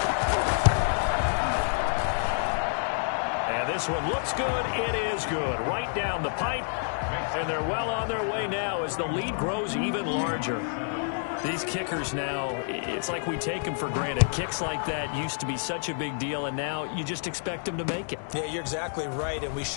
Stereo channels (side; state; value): right; silent; digital silence